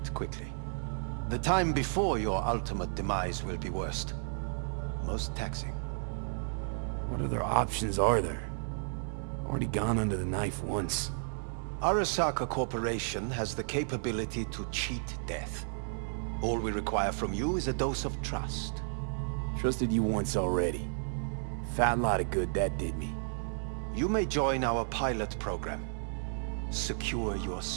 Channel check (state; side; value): silent; left; 56 dB below the other